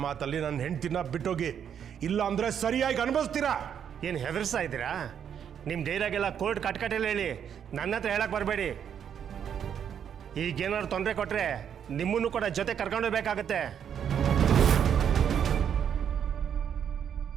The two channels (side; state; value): left; quieter; 8.4 dB